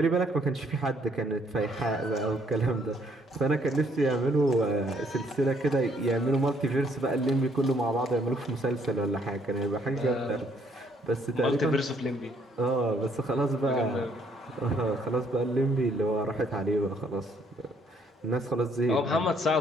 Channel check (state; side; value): normal; both; correlation 0.67